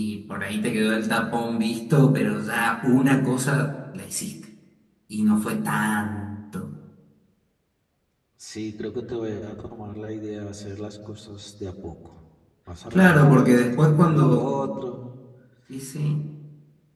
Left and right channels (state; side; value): identical; both; correlation 1.00